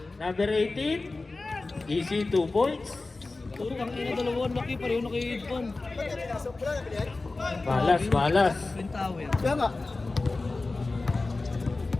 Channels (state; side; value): quieter; right; 3.4 dB